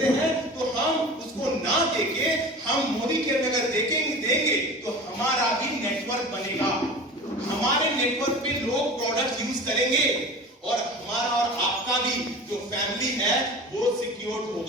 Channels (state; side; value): normal; both; correlation 0.35